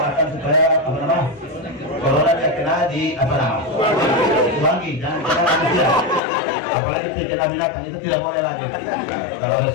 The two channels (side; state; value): right; drops out; at 6.2 s